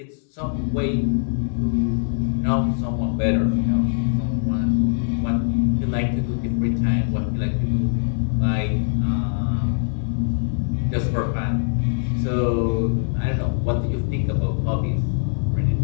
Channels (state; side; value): silent; right; 62 dB below the other